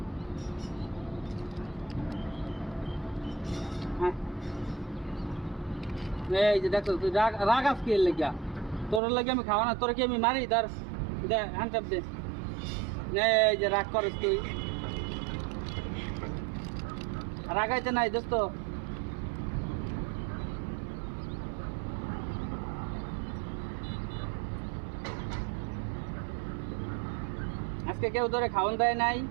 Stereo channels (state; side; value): drops out; left; at 9.0 s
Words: হ্যাঁ, এই যে দেখো তুই রাগাস কি লেগা? তোর লাগে আমি খাওয়া না, তোর কি আমি মারি? ধর দে, হ্যান্ড চাপ দে। এই যে রাগ করস তুই, রাগাইতে নাই দোস্ত। আজকে কেউ ধরে খাওয়ান দেয় নাই।